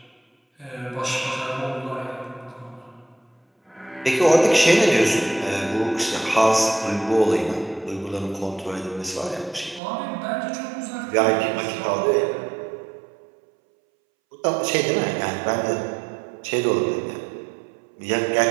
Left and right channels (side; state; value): left; drops out; at 9.8 s